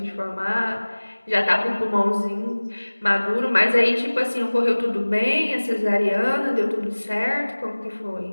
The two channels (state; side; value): inverted; both; correlation -1.00